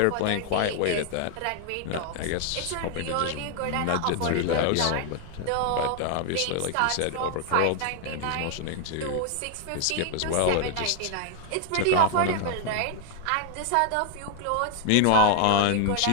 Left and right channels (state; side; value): different; both; correlation 0.00